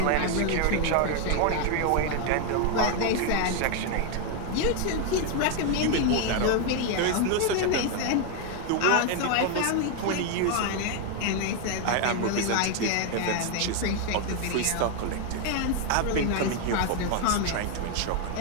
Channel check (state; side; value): different; both; correlation 0.01